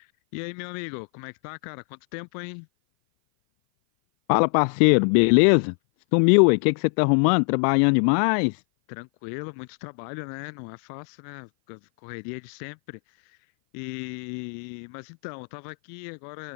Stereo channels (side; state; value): right; silent; 57 dB below the other